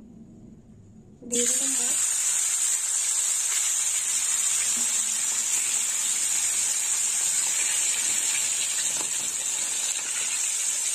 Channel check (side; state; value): both; identical; correlation 1.00